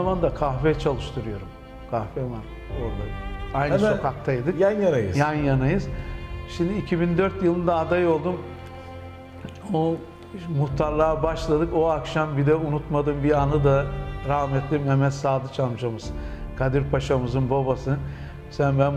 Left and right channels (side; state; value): both; identical; correlation 1.00